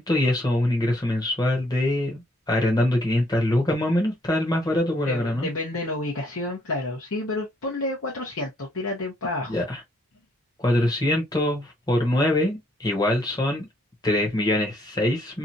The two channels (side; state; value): both; normal; correlation 0.68